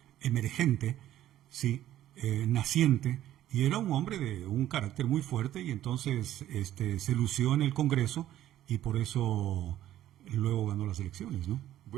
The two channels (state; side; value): quieter; left; 12.8 dB